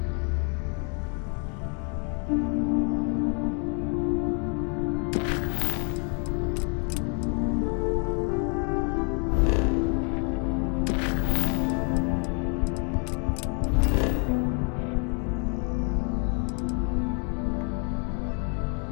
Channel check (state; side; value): quieter; right; 38.7 dB